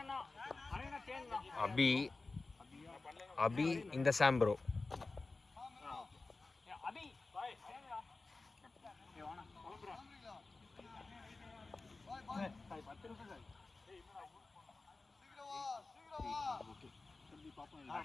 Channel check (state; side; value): quieter; right; 3.6 dB